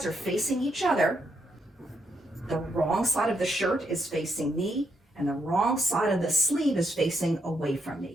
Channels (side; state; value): both; normal; correlation 0.78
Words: are facing each other. The wrong side of the shirt is facing me, and the wrong side of the sleeve is facing away from